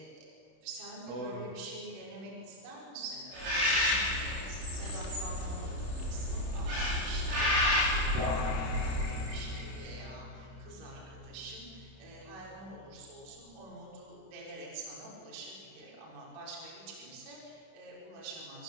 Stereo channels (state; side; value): late; left; 31 ms